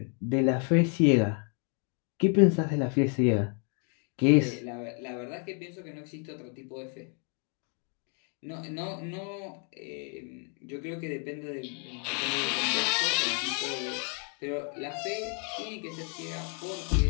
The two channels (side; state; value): right; quieter; 38.1 dB